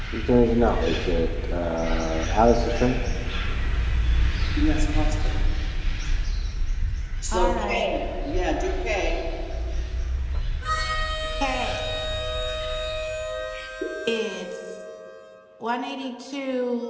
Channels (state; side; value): identical; both; correlation 1.00